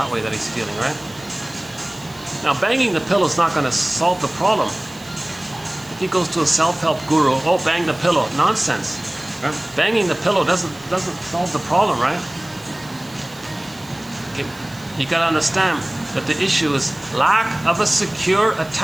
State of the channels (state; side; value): noise; right; hiss, 22 dB below the sound